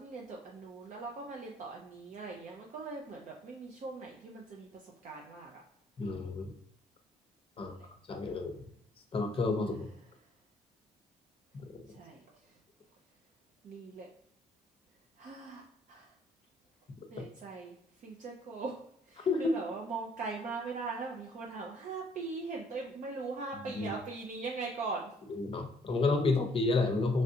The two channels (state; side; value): normal; both; correlation 0.63